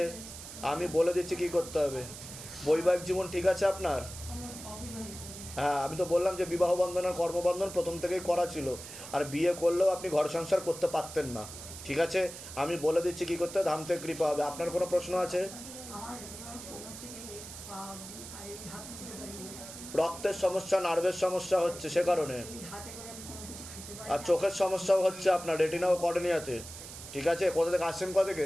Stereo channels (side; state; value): right; noise; hiss, 12 dB below the sound